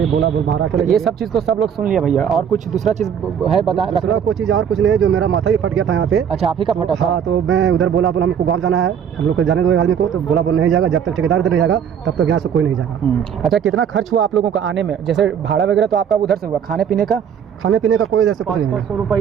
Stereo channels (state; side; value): quieter; left; 8.1 dB